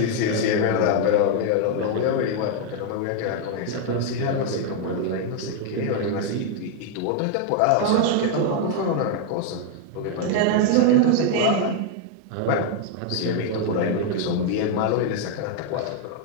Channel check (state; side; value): different; both; correlation 0.00